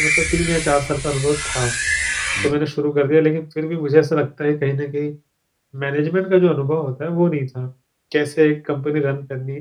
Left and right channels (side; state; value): both; identical; correlation 1.00